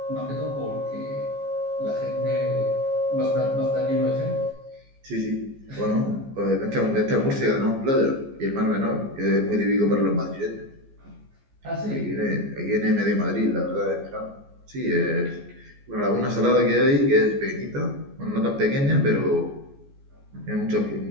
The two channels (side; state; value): left; late; 14 ms